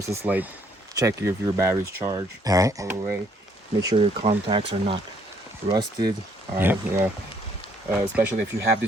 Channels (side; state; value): both; normal; correlation 0.66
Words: is like check if your battery's charged all the way. Make sure your contacts are not rusted. All right, yeah. Especially if you have